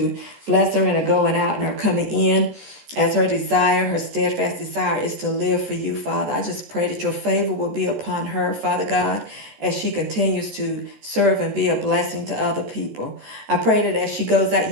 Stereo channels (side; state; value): left; late; 14 ms